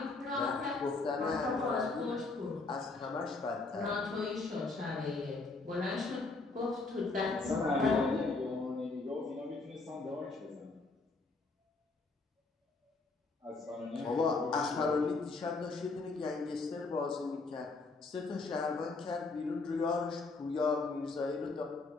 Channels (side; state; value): right; quieter; 3.7 dB